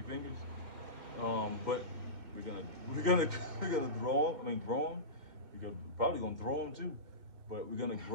fingers. But we're gonna grow them. We're probably gonna throw them too, but we're gonna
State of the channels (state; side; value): late; left; 2.2 ms